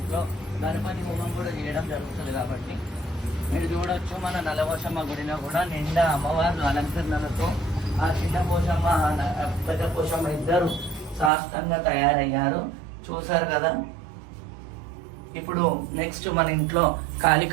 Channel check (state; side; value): drops out; left; at 11.3 s